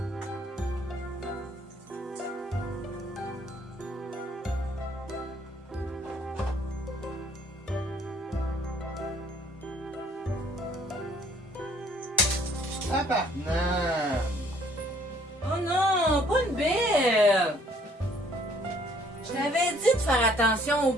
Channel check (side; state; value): both; normal; correlation 0.61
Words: Tabarnak! Oh non, pas une belle! Je t'avais dit de faire attention aux